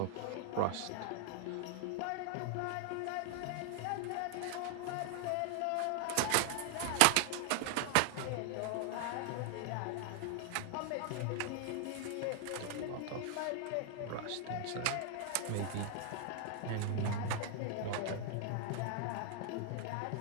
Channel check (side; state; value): both; different; correlation 0.00